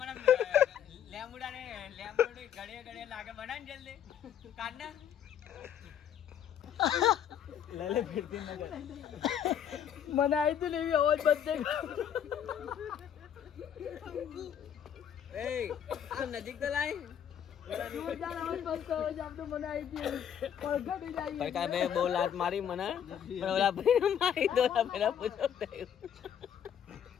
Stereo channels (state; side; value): quieter; right; 9.1 dB